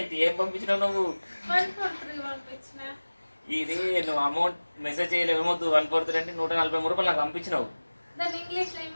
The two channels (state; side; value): inverted; both; correlation -1.00